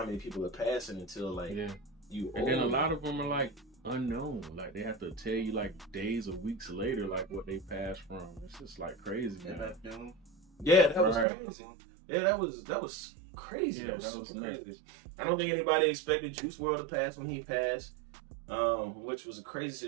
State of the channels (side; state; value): left; drops out; at 11.2 s